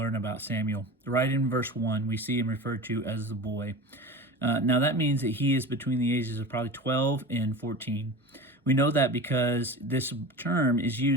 about Samuel. Right in verse 1, we see him referred to as the boy. Now that means that he is between the ages of probably 12 and 14. We know that because this term is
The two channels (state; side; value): normal; both; correlation 0.32